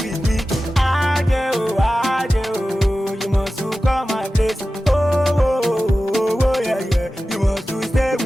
me. Ajay, you must come my place. Oh, yeah, you must stay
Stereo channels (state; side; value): normal; both; correlation 0.95